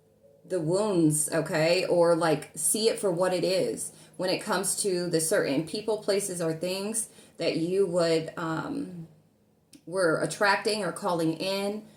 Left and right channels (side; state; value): both; identical; correlation 1.00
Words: wounds. Okay. Or like see it for what it is when it comes to the certain people, places, or things that you would, were attracting or calling in